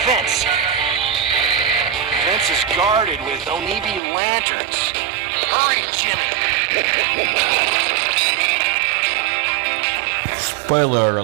fence. The fence is guarded with Onibi lanterns. Hurry, Jimmy! Spoiler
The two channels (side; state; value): left; drops out; at 4.0 s